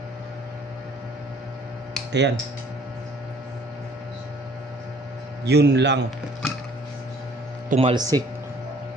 Ayan. Yun lang. Tumalsik.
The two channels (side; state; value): both; normal; correlation 0.57